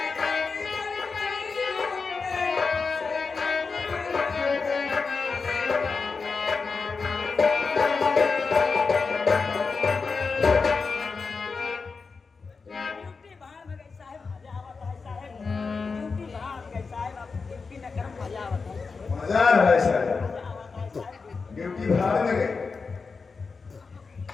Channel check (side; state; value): right; quieter; 4.7 dB